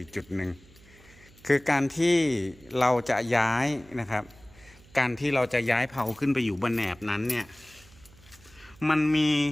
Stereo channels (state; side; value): noise; right; hum, 25 dB below the sound